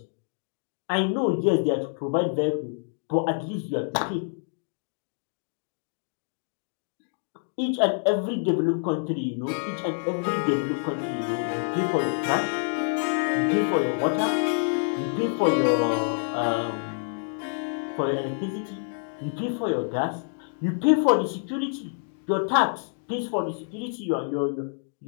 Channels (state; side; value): silent; right; digital silence